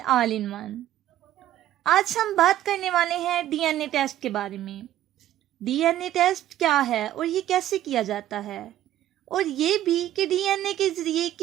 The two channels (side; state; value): left; quieter; 12.9 dB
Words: all in one. آج ہم بات کرنے والے ہیں ڈی این اے ٹیسٹ کے بارے میں۔ ڈی این اے ٹیسٹ کیا ہے اور یہ کیسے کیا جاتا ہے، اور یہ بھی کہ ڈی این اے کے ذریعے